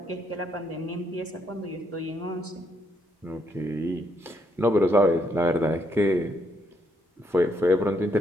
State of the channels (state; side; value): normal; both; correlation 0.74